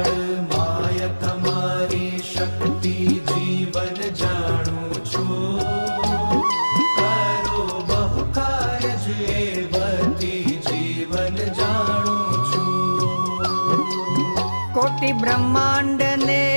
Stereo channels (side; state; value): both; inverted; correlation -1.00